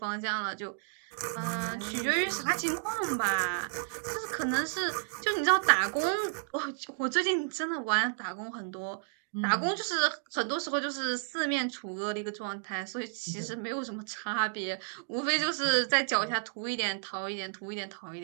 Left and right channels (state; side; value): silent; left; digital silence